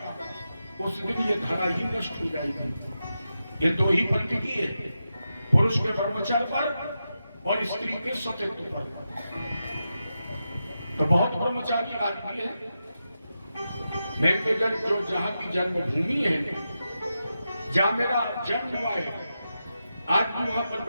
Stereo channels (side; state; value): both; inverted; correlation -0.89